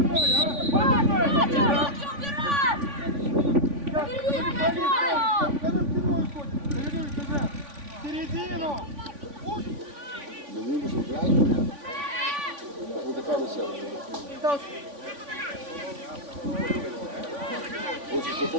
Середину! Не вийдеш грати? Буде карусель. Хочеш, що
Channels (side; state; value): left; late; 3.5 ms